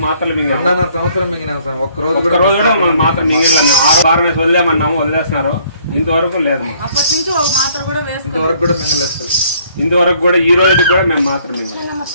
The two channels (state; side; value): inverted; both; correlation -0.62